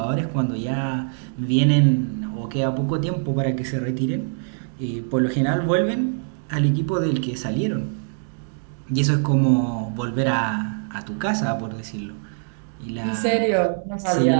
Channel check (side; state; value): left; silent; 60 dB below the other